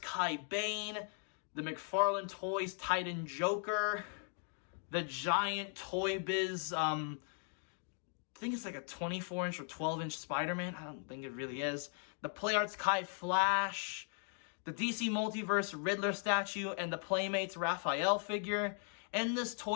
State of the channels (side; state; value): right; silent; 52 dB below the other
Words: Kai Bane, the McFarlane Toys Titan Joker, the giant Toy Biz, I think it's like a 24-inch or 12-inch Spider-Man. I don't think it really is. The PlayArts Kai Flash, the DC Multiverse Riddler statue, and the Playmates Raphael figure, and this